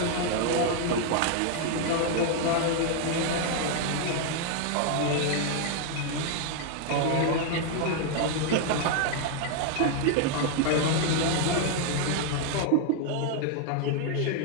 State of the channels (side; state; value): both; different; correlation 0.00